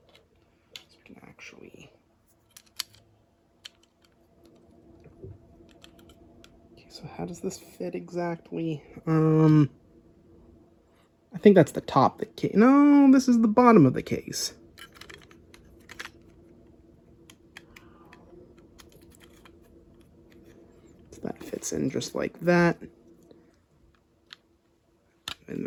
we can actually... So how does this fit exactly? I think that's the top of the case. No, this is the bottom of the case. So that fits in just like that. And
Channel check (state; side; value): identical; both; correlation 1.00